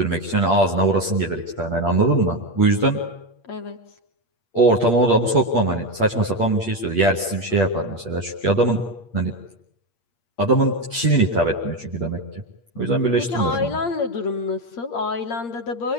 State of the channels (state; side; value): late; right; 8.6 ms